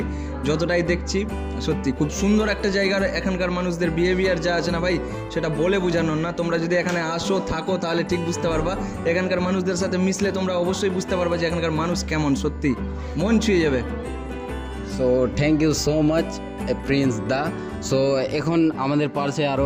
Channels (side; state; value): both; identical; correlation 1.00